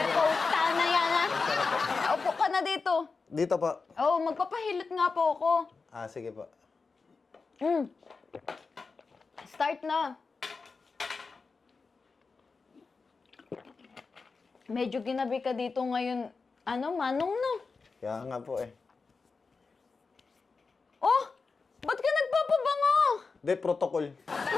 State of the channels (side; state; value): right; quieter; 4.5 dB